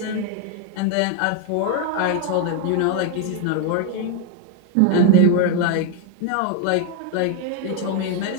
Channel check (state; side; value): different; both; correlation 0.01